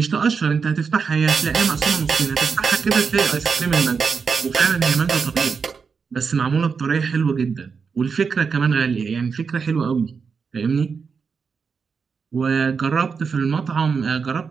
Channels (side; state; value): left; quieter; 5.6 dB